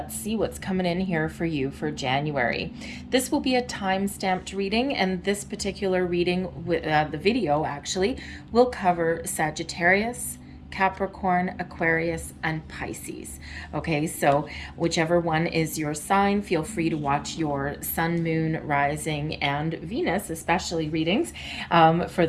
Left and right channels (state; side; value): identical; both; correlation 1.00